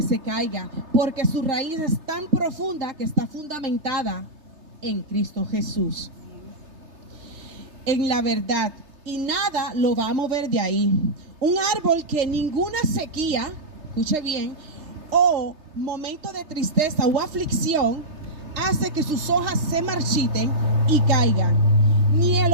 se caiga, porque su raíz es tan profunda que está fundamentada en Cristo Jesús, en la verdad, y nada lo va a mover de ahí. Un árbol que ninguna sequía, escuche bien, o momento de tristeza o aflicción hace que sus hojas se marchiten y caigan. Ni el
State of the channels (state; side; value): late; left; 3.3 ms